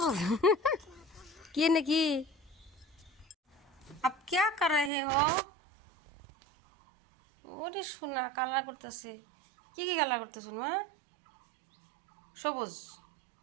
কি নাকি? আপ क्या कर रहे हो? ওরে সোনা, কালার করতেছে। কি কি কালার করতেছ মা? সবুজ।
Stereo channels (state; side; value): drops out; left; at 4.9 s